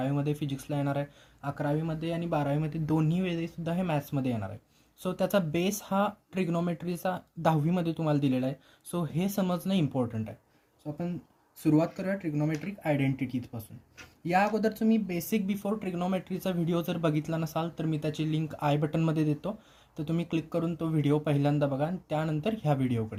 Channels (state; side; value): identical; both; correlation 1.00